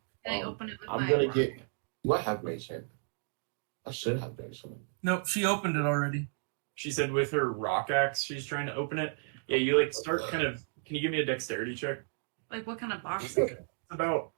Can I open it with I'm my gonna get. Do I have mage hand? I should have mage hand. Nope, she opened it already. She said with her rock axe, she's trying to open it. Yeah, you like start kind of. Can you give me a dexterity check? Like, what kind of box? It's about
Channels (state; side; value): silent; left; 56 dB below the other